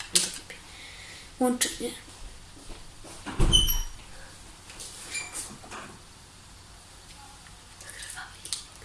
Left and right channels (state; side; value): identical; both; correlation 1.00